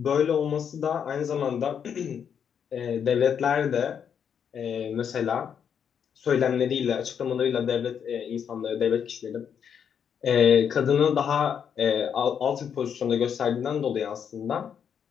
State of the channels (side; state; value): right; quieter; 7.8 dB